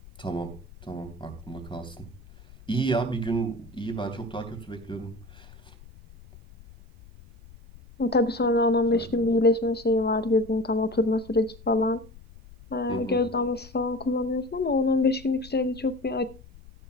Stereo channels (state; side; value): noise; left; rumble, 21 dB below the sound